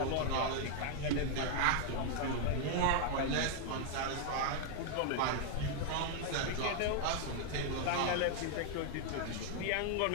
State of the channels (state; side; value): different; both; correlation 0.00